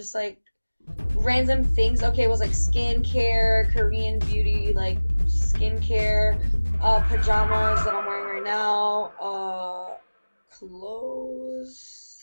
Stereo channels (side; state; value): both; inverted; correlation -1.00